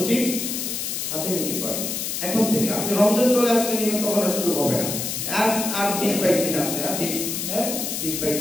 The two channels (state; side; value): noise; left; hiss, 3 dB below the sound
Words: নিতে পারি, এখন থেকে। আপনি রমজান চলে আসলে নিবেন, তখন আর সুযোগ হবে না। আর 20-22 দিন আছে, আর 20-22